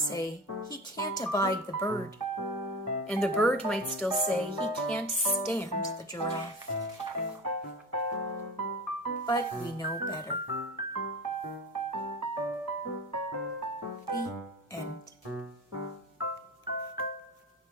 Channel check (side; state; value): both; normal; correlation 0.31